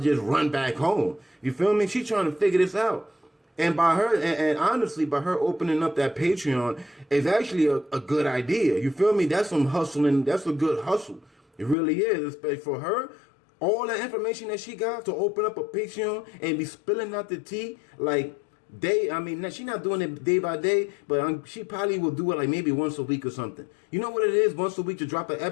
run back home. You feel me? She's trying to figure this out. And by her, and honestly, by her opening up that Patreon is actually a good idea. You feel me? That's some hustling. That's a good hustle. It really is. Especially for her, all the information that she got to open up a Patreon and be spilling out the tea like she's not doing it day by day, but she probably will do it like maybe once a week or something. You know what it is? Once a week to drop an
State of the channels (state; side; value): drops out; right; at 11.8 s